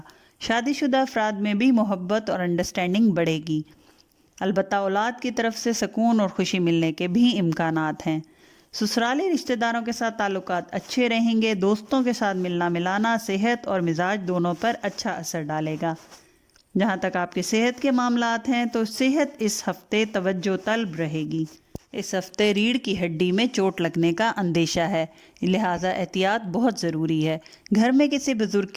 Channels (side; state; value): both; identical; correlation 1.00